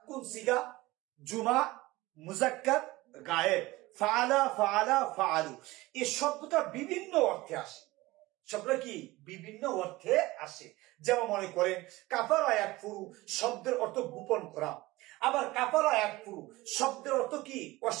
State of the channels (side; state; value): left; quieter; 19.7 dB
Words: কোন সিগা? জুমা, মুজাক্কার, গায়েব। ফাআলা ফাআলা ফাআলু, এই শব্দটা বিভিন্ন অর্থে আসে। শব্দটা কি বিভিন্ন অর্থে আসে। যেমন মনে করেন কাফারা ইয়াকফুরু শব্দের অর্থ গোপন করা, আবার কাফারা ইয়াকফুরু শব্দের অর্থ কি